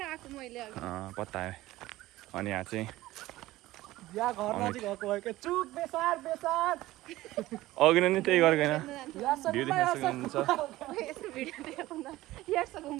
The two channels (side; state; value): left; quieter; 17.0 dB